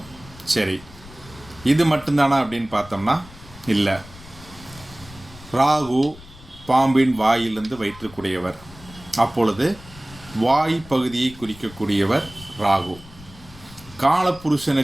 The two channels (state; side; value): noise; left; rumble, 20 dB below the sound